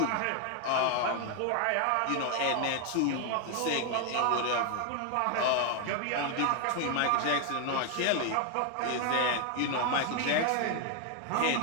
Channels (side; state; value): both; different; correlation 0.01